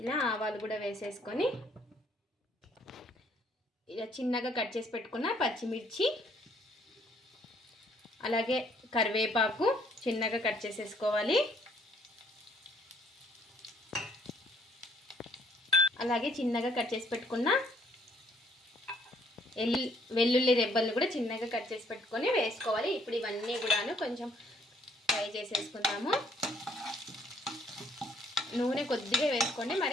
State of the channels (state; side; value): normal; both; correlation 0.65